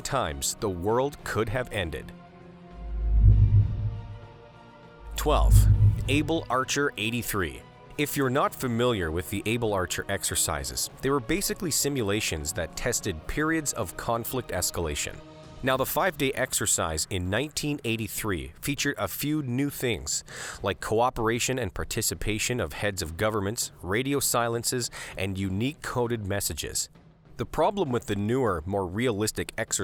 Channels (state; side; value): identical; both; correlation 1.00